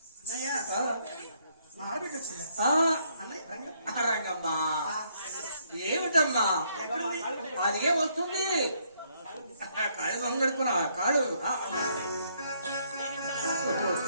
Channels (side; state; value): both; inverted; correlation -0.70